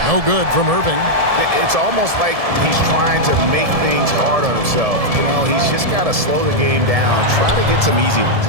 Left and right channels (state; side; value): late; left; 1.7 ms